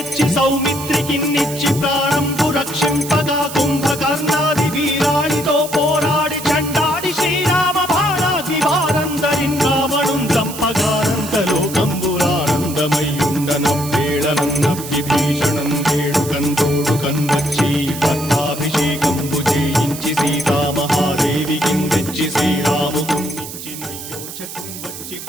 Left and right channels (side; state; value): right; noise; hiss, 10 dB below the sound